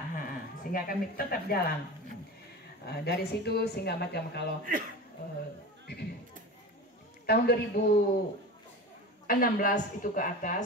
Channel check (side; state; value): both; normal; correlation 0.30